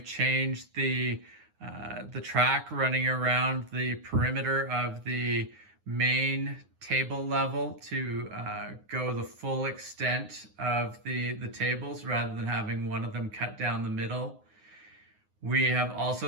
changed the track running around the perimeter of the main table level to go the full extent of the tables rather than having one of them cut down the middle. We have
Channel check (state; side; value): late; left; 9.6 ms